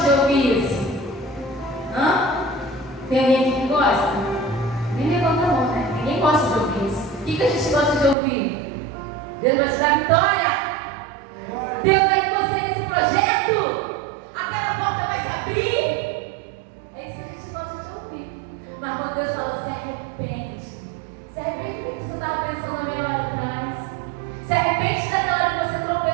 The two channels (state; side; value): drops out; left; at 8.2 s